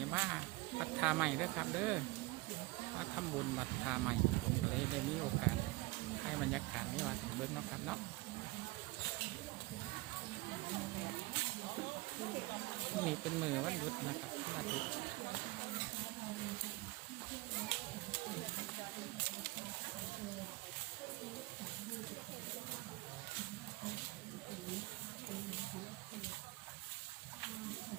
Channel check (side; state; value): left; quieter; 22.2 dB